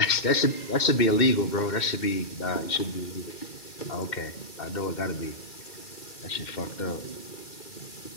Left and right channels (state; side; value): late; right; 2.1 ms